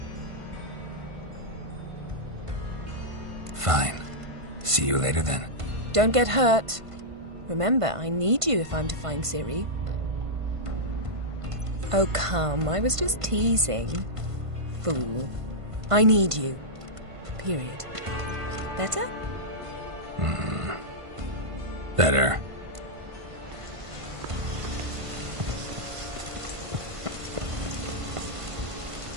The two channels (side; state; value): left; late; 1.5 ms